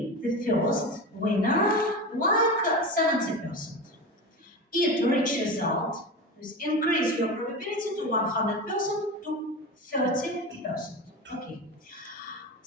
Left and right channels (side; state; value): both; normal; correlation 0.25